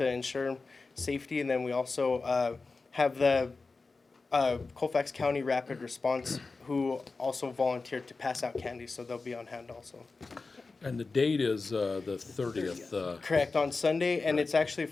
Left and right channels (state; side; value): quieter; right; 4.0 dB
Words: ensure safety. And then we also have the Colfax County Rapid Response, who also volunteered to pass out candy, so they'll be on hand also. And the date is the 30th, Correct, on Sunday, and it's actually